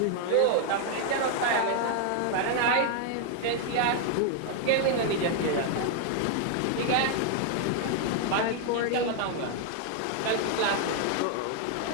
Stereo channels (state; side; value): different; both; correlation 0.00